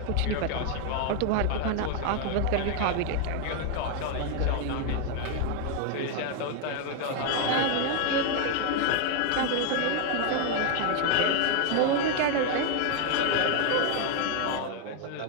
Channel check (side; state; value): both; different; correlation 0.00